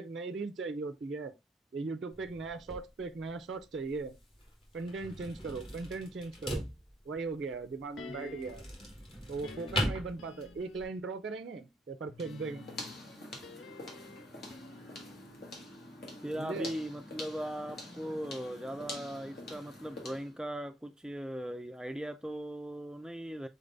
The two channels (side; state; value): both; normal; correlation 0.67